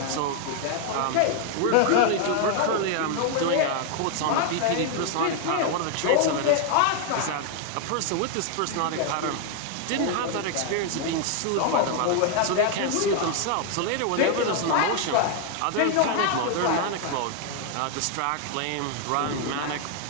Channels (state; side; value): different; both; correlation 0.00